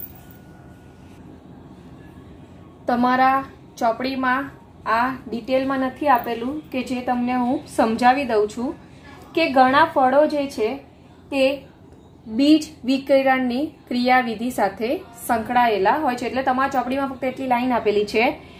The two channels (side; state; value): both; identical; correlation 1.00